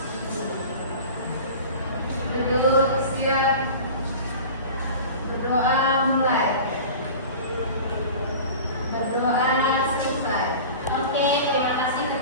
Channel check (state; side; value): inverted; both; correlation -0.37